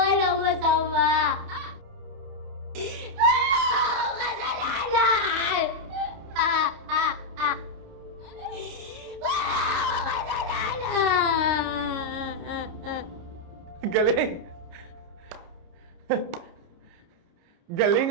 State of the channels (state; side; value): late; left; 29 ms